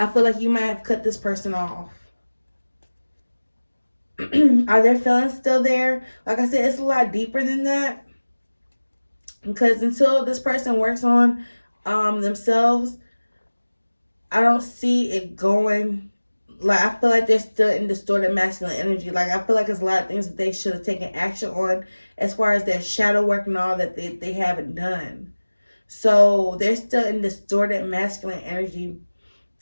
feel like you might have cut this person off. Are their feelings still there? Like I said, it's a lot deeper than that. Because until this person works on themselves, I don't see it going. Like, I feel like they're still in distorted masculine energy. Like, I feel like there's a lot of things that they should have taken action on as far as their shadow work and all that they haven't done. So they're still in distorted masculine energy.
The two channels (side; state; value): both; inverted; correlation -1.00